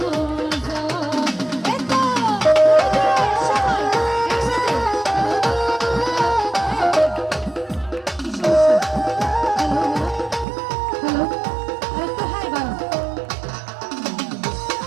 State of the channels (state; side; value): drops out; left; at 10.5 s